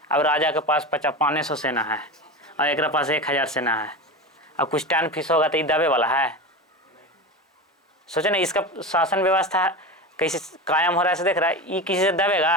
अब राजा के पास 500 सेना है और एक पास 1000 सेना है। अब कुछ टर्न फीस होगा तो ये दबे वाला है? सोचे ना, इसका शासन व्यवस्था कैसे कायम हो रहा है, से देख रहा है, ये किसी से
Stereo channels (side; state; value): both; normal; correlation 0.25